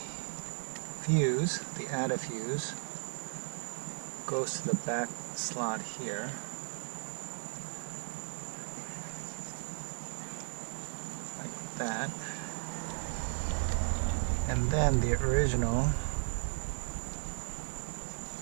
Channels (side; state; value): left; silent; digital silence